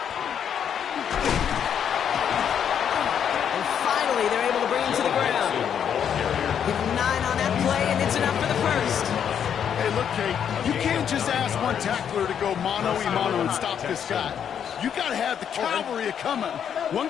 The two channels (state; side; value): quieter; right; 8.4 dB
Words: And finally, they're able to bring him to the ground. Give him 9 on that play, and it's enough for the first. Hey, look, Kate, you can't just ask one tackler to go mano-a-mano and stop this guy. You got to have the cavalry coming. One